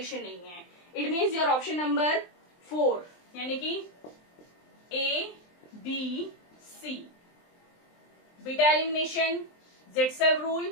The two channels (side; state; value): right; late; 23 ms